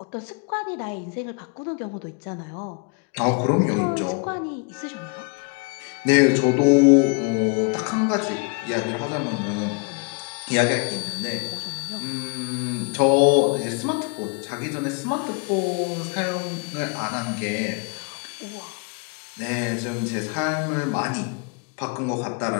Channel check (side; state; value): right; quieter; 33.5 dB